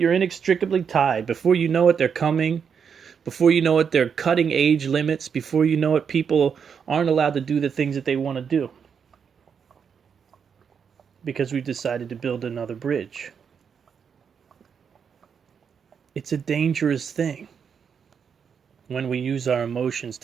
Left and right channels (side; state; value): left; quieter; 6.8 dB